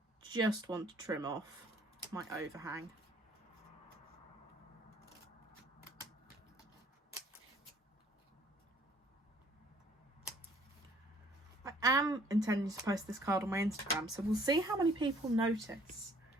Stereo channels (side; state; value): both; normal; correlation 0.59